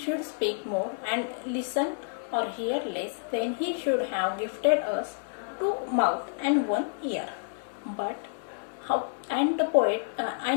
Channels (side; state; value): right; silent; digital silence